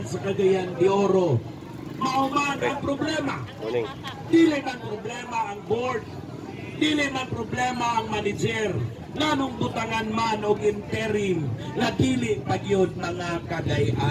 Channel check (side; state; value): both; identical; correlation 1.00